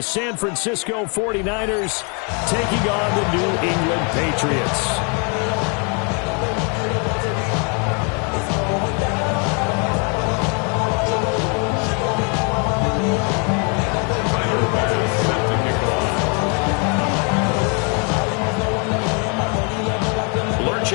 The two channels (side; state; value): right; quieter; 35.8 dB